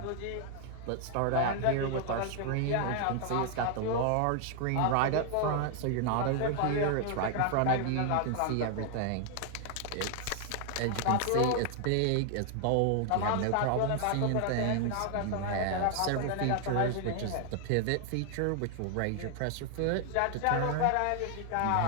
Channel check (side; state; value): both; different; correlation 0.00